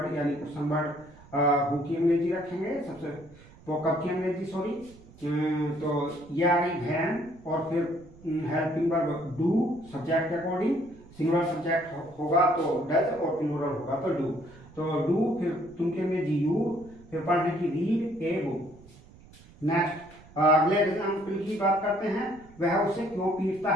यानी क्वेश्चन वर्ड हु की अंग्रेजी रखेंगे, सबसे वो कब की अंग्रेजी तो ये आ गई वैन, और फिर हेल्पिंग वर्ब डू सब्जेक्ट के अकॉर्डिंग, सिंगुलर सब्जेक्ट होगा तो डज और प्लूरल होगा तो डू। तो डू, फिर तुम की अंग्रेजी यू, फिर पढ़ने की रीड ए बुक। नेक्स्ट अगले एग्जाम्पल की बात करते हैं, वह उसे क्यों पीटता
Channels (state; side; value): noise; right; rumble, 23 dB below the sound